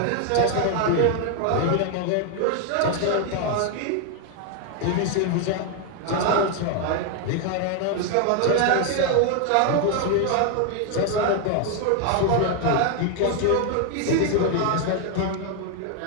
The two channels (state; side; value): different; both; correlation 0.01